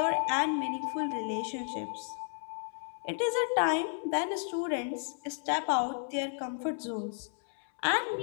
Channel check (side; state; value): right; silent; 56 dB below the other